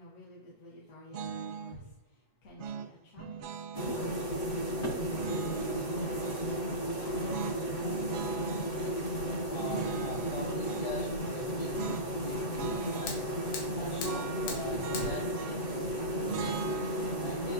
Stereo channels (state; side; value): late; right; 7.8 ms